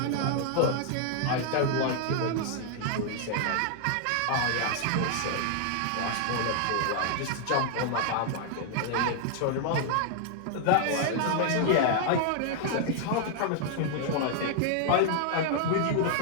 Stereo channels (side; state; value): both; different; correlation 0.00